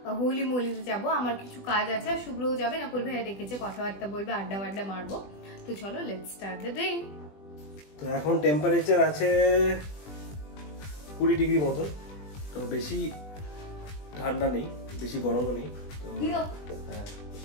হোলি মোলিতে যাবো। আমার কিছু কাজ আছে, আর শুভ্রও যাবে, নকুল ভাইয়া ডেকেছে, কথাবার্তা বলবে, আড্ডা মারবো। তো চলো লেটস স্টার্ট দ্য ডে। তো এখন টেম্পারেচার আছে 20 ডিগ্রি মতো, তো বেশি ঠান্ডা নেই, বেশি গরমও নেই। তো হ্যাঁ,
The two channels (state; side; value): late; right; 20 ms